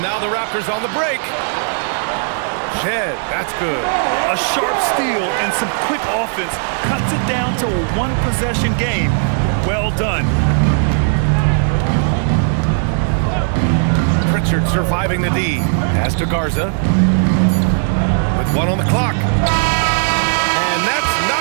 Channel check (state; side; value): silent; left; digital silence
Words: now the Raptors on the break. Shed, that's good. A sharp steal and some quick offense cuts it down to a one-possession game. Well done. Pritchard surviving the D. Pass to Garza. With 1 on the clock. And that's